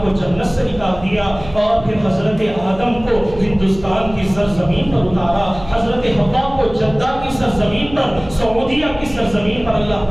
کو جنت سے نکال دیا اور پھر حضرت آدم کو ہندوستان کی سرزمین پر اتارا، حضرت حوا کو جدہ کی سرزمین پر، سعودیہ کی سرزمین پر اللہ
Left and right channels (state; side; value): noise; right; hum, 16 dB below the sound